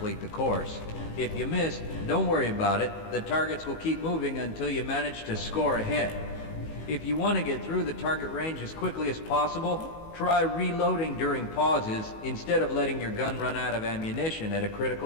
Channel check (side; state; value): right; late; 19 ms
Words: the course. If you miss, don't worry about it. The targets will keep moving until you manage to score a hit. If you want to get through the target range as quickly as possible, try reloading during pauses instead of letting your gun run out of ammunition at a